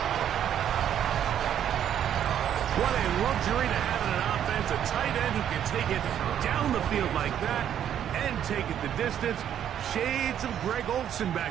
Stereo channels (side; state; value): left; quieter; 9.9 dB